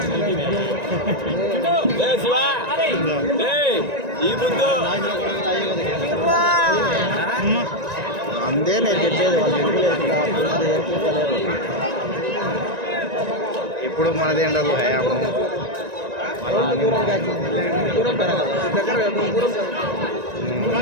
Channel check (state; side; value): late; left; 1.9 ms